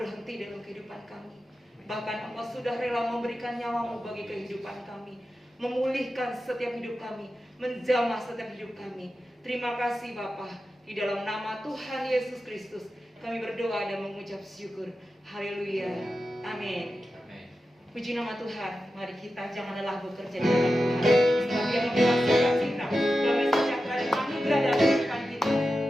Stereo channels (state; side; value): normal; both; correlation 0.92